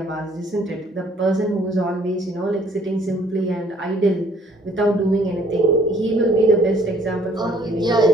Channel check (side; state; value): both; normal; correlation 0.59